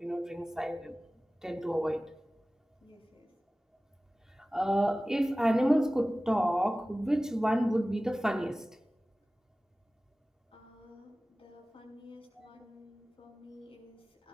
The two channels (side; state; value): both; normal; correlation 0.97